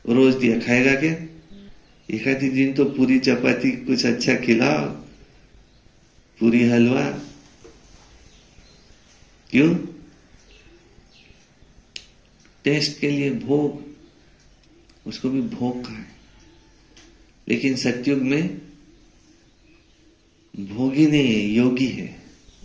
रोज दिया, खाएगा क्या? एक आधी दिन तो पूरी चपाती कुछ अच्छा खिलाओ, पूरी हलवा। क्यों? टेस्ट के लिए भोग, उसको भी भोग का है। लेकिन सतयुग में भोगी नहीं है, योगी है।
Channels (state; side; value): identical; both; correlation 1.00